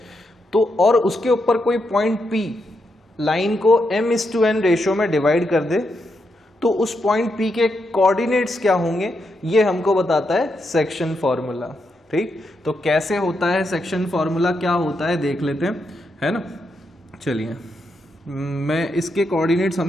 तो और उसके ऊपर कोई पॉइंट P लाइन को m/n रेशियो में डिवाइड कर दे, तो उस पॉइंट P के कोऑर्डिनेट्स क्या होंगे ये हमको बताता है सेक्शन फॉर्मूला। ठीक, तो कैसे होता है सेक्शन फॉर्मूला, क्या होता है देख लेते हैं, है ना। चलिए, मैं इसके कोऑर्डिनेट्स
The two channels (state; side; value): normal; both; correlation 0.83